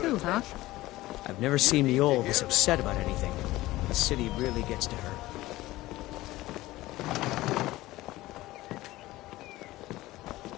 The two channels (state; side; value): quieter; right; 17.7 dB